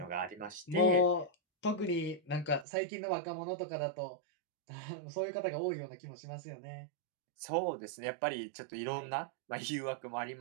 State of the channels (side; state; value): left; drops out; at 2.7 s